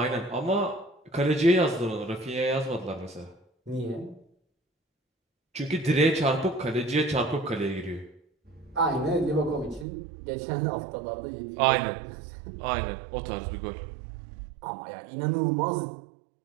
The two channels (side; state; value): left; drops out; at 9.9 s